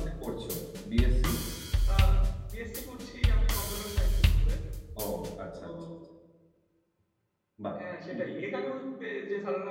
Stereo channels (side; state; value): both; identical; correlation 1.00